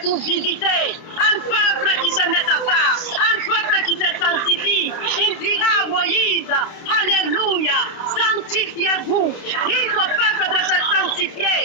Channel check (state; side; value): late; right; 30 ms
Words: visiter un peuple qui se met à part, un peuple qui se sanctifie. Il dira à Moïse, alléluia, sanctifiez-vous. Dites au peuple de se sanctifier,